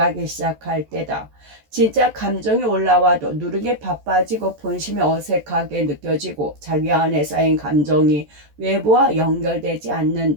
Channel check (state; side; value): late; left; 14 ms